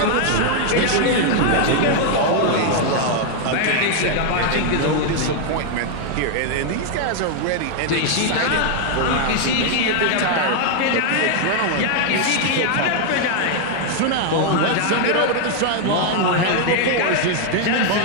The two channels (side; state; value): both; different; correlation 0.00